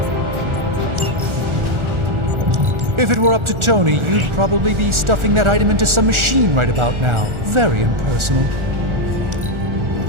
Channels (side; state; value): left; late; 1.4 ms